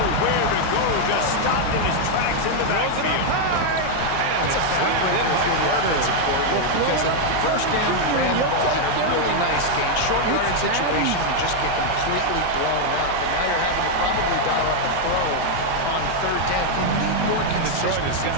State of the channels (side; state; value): both; different; correlation 0.00